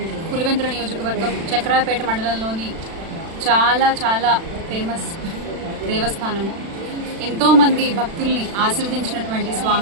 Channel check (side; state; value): left; late; 36 ms